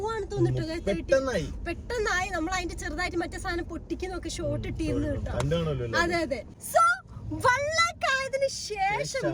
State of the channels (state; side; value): identical; both; correlation 1.00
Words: തോന്നിട്ടോ. പെട്ടെന്നായി. നമ്മൾ അതിന്റെ ചെറുതായിട്ട് മറ്റേ സാധനം പൊട്ടിക്കുന്നൊക്കെ ഷോർട്ട് ഇട്ടിരുന്നു കേട്ടോ. അതെ അതെ. സോ 1 lakh ആയതിനു